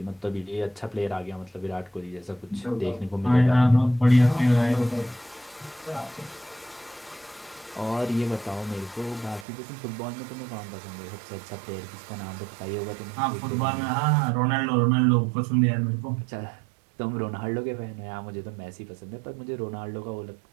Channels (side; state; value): left; drops out; at 9.5 s